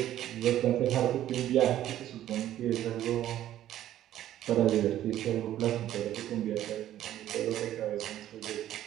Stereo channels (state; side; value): quieter; left; 12.5 dB